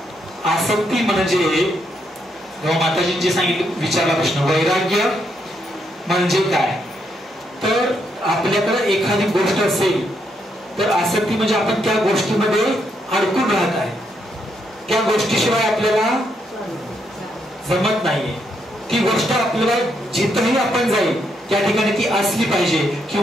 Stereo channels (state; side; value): normal; both; correlation 0.77